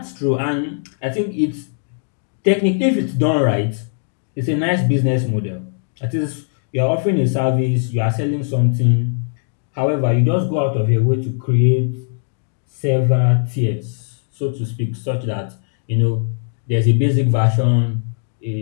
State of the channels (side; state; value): right; silent; digital silence